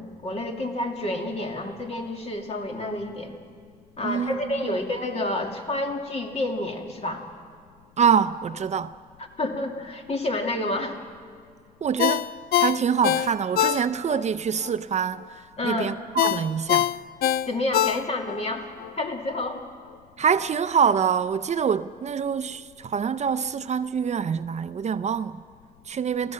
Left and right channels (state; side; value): noise; left; rumble, 29 dB below the sound